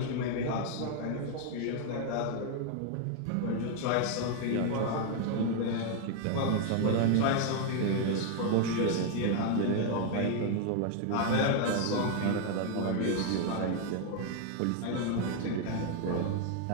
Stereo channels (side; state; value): both; different; correlation 0.01